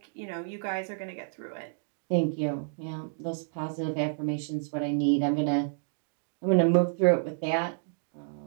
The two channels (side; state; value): left; silent; digital silence